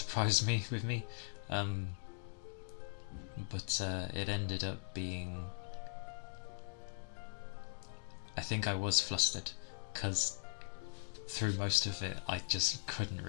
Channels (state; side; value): silent; right; digital silence